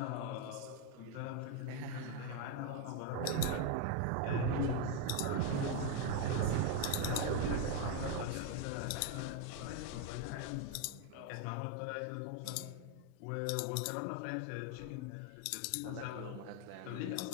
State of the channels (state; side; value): different; both; correlation 0.01